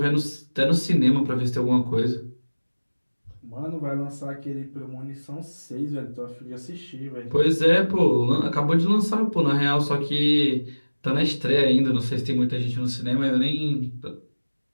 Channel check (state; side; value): inverted; both; correlation -1.00